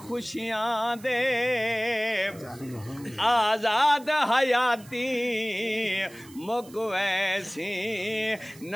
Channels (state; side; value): noise; right; hiss, 22 dB below the sound